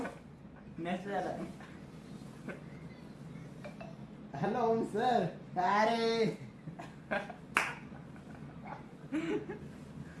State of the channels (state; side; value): identical; both; correlation 1.00